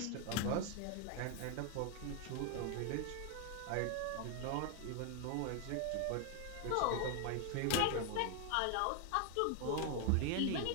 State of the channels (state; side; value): different; both; correlation 0.01